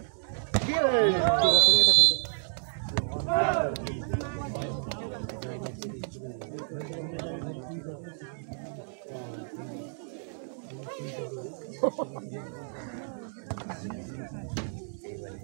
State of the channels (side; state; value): left; silent; digital silence